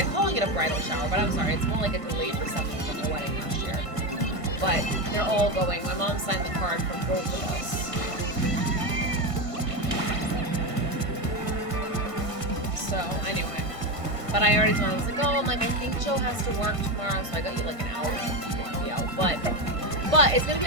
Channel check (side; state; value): left; late; 1.5 ms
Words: calling it a bridal shower, but I'm sorry, it's more like a delayed reception from their wedding last year. But they're all going. My mom signed the card for both of us. So, anyway. But I already told him, I was like, oh, I'm like, I think Joe has to work tomorrow, so I got you, like, an hour. You won't be out. But it's gonna be